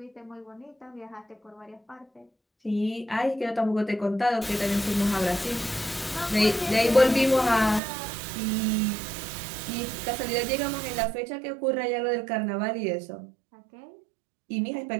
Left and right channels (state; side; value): drops out; left; at 7.8 s